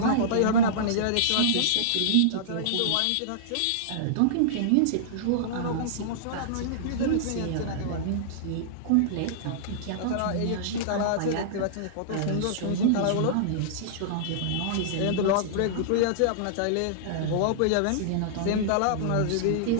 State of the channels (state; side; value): different; both; correlation -0.02